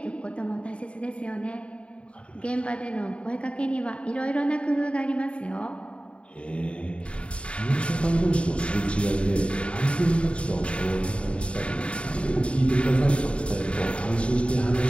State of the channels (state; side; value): late; right; 0.059 ms